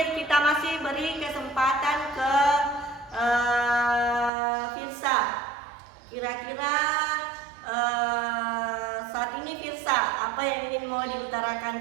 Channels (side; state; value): left; drops out; at 4.3 s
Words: kita masih beri kesempatan ke Firsa. Kira-kira saat ini Firsa, apa yang ingin mau diutarakan?